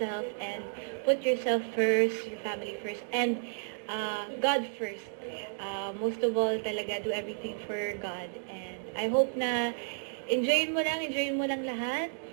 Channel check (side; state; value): left; silent; digital silence